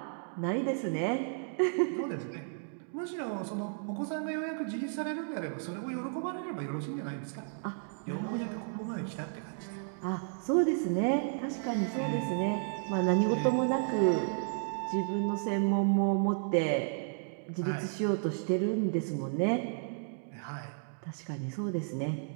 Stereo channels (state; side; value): silent; left; digital silence